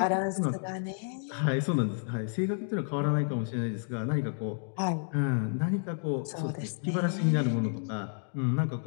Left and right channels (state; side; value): silent; right; digital silence